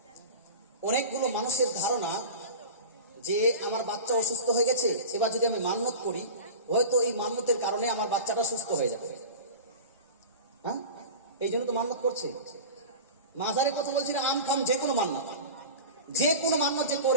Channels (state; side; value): inverted; both; correlation -0.32